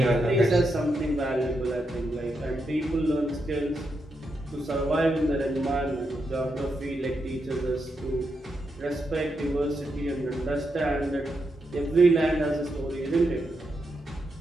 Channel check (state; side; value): normal; both; correlation 0.84